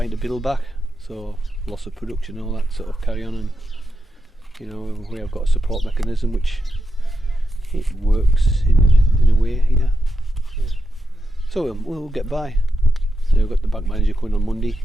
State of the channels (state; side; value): normal; both; correlation 0.87